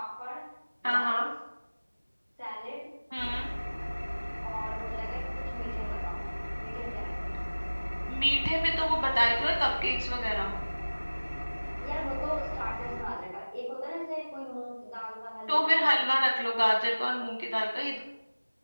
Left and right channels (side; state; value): both; inverted; correlation -1.00